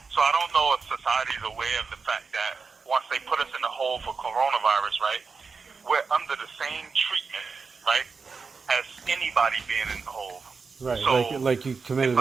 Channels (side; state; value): left; quieter; 4.9 dB